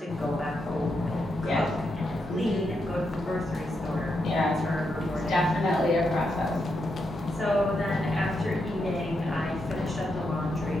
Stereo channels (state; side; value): normal; both; correlation 0.83